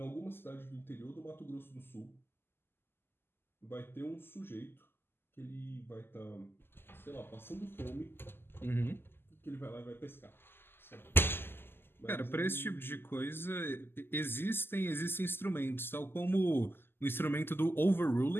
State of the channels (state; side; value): late; right; 0.11 ms